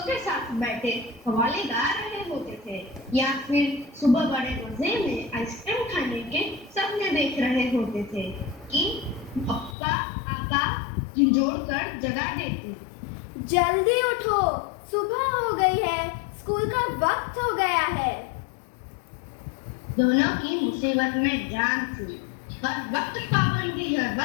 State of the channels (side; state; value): right; drops out; at 9.8 s